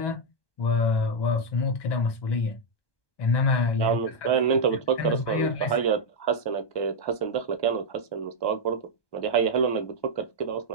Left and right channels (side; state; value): right; late; 1.2 ms